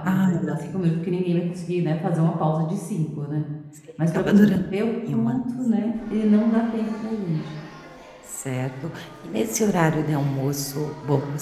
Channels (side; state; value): both; identical; correlation 1.00